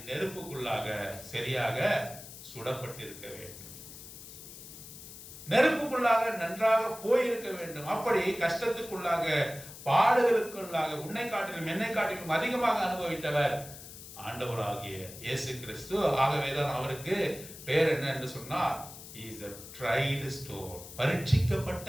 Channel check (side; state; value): left; noise; hiss, 14 dB below the sound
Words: நெருப்புக்குள்ளாக சரியாக சுடப்பட்டிருக்க வேண்டும், நெருப்புக்குள்ளாக நன்றாக போயிருக்க வேண்டும். அப்படி கஷ்டத்துக்குள்ளாக பாடுகளுக்குள்ளாக உன்னை காட்டிலும் என்னை காட்டிலும் அதிகமாக அனுபவித்தவர் ஆண்டவராகிய இயேசு கிறிஸ்து. ஆகவேதான் அவருக்கு பேர் என்ன என்று சொன்னால் he is a tried stone, பரீட்சிக்கப்பட்ட